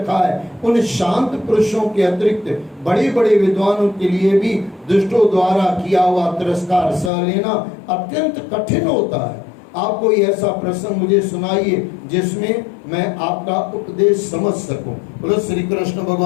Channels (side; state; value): right; drops out; at 7.1 s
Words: है, उन शांत पुरुषों के अतिरिक्त बड़े बड़े विद्वानों के लिए भी दुष्टों द्वारा किया हुआ तिरस्कार सह लेना अत्यंत कठिन होता है। आप कोई ऐसा प्रसंग मुझे सुनाइए जिसमें मैं आपका उपदेश समझ सकूं। बोलो श्री कृष्ण